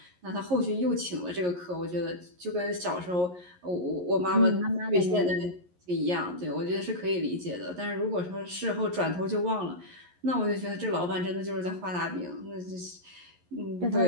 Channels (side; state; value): left; late; 11 ms